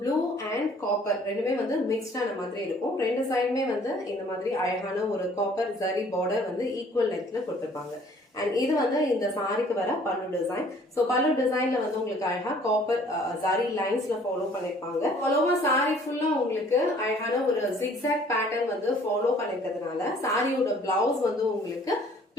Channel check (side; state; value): both; normal; correlation 0.56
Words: blue and copper ரெண்டுமே வந்து மிக்ஸ்டான மாதிரி இருக்கும். ரெண்டு சைடுமே வந்து இந்த மாதிரி அழகான ஒரு காப்பர் ஜரி பார்டர் வந்து ஈக்குவல் லென்த்ல கொடுத்திருப்பாங்க. அண்ட் இது வந்து இந்த சாரிக்கு வர பல்லு டிசைன். சோ பல்லு டிசைன்ல வந்து உங்களுக்கு அழகா காப்பர் ஜரி லைன்ஸ்ல ஃபாலோ பண்ணிருப்பாங்க. ஃபாலோவா சாரி ஃபுல்லா உங்களுக்கு அழகான ஒரு ஜிக்ஸாக் பேட்டர்ன் வந்து ஃபாலோ பண்ணிருக்கிறதுனால சாரியோட பிளவுஸ் வந்து உங்களுக்கு